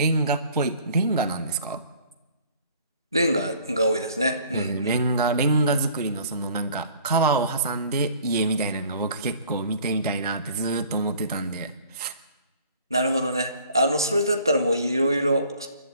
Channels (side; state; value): both; inverted; correlation -0.53